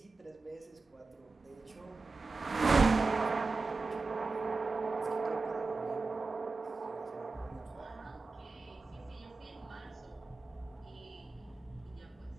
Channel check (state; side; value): quieter; left; 3.9 dB